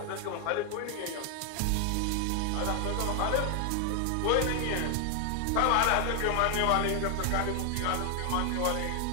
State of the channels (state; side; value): different; both; correlation 0.00